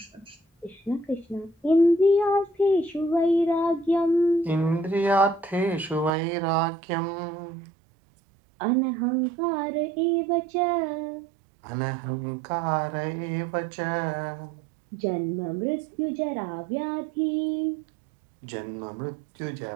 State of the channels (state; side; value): drops out; left; at 6.1 s